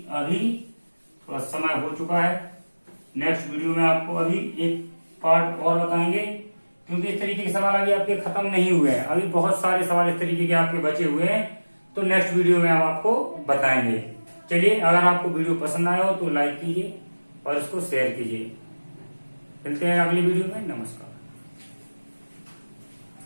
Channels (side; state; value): both; inverted; correlation -1.00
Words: अभी थोड़ा समय हो चुका है। नेक्स्ट वीडियो में आपको अभी एक पार्ट और बताएंगे, क्योंकि इस तरीके के सवाल अभी आपके खत्म नहीं हुए हैं। अभी बहुत सारे सवाल इस तरीके के आपके बचे हुए हैं, तो नेक्स्ट वीडियो में हम आपको बताएंगे। चलिए, अगर आपको वीडियो पसंद आया हो तो लाइक कीजिए और इसको शेयर कीजिए। मिलते हैं अगली वीडियो में। नमस्कार।